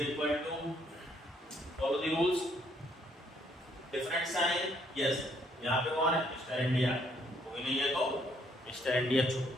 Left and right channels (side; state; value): both; normal; correlation 0.68